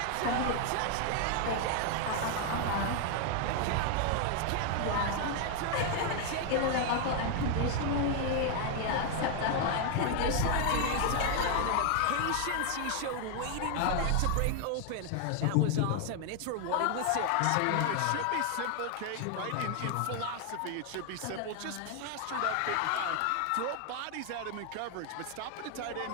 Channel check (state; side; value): different; both; correlation 0.00